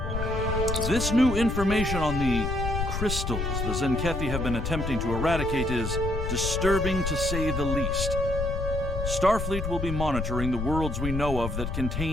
This new information on the crystals the Zenkethi have been attempting to eradicate is disturbing to say the least. Starfleet will be monitoring the worlds we know of that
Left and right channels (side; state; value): left; noise; rumble, 3 dB below the sound